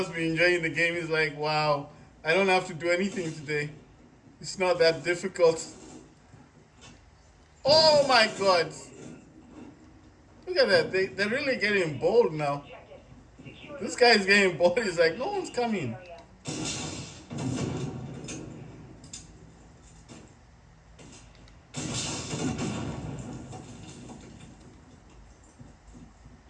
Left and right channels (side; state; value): both; identical; correlation 1.00